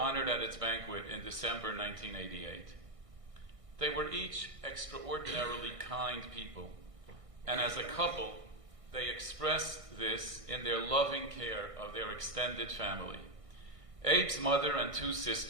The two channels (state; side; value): late; left; 1.6 ms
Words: at its banquet in December 1988. They were each extraordinarily kind people, and as a couple, they expressed this in their loving care of their extended family. Abe's mother and two